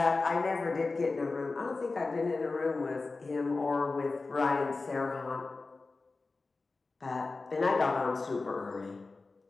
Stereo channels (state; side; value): quieter; right; 3.7 dB